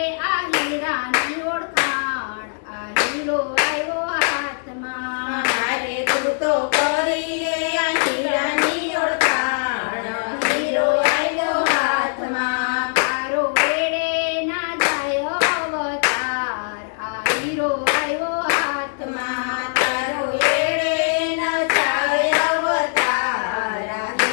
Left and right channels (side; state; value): right; silent; digital silence